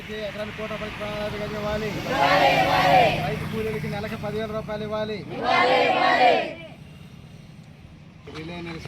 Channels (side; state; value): both; identical; correlation 1.00